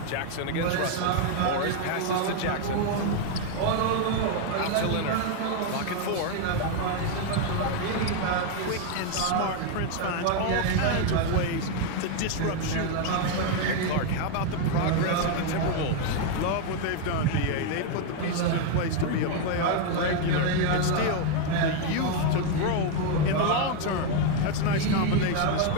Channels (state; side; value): different; both; correlation 0.01